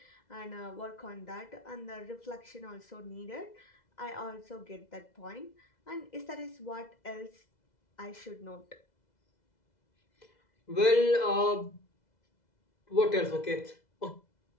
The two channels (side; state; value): right; late; 2.0 ms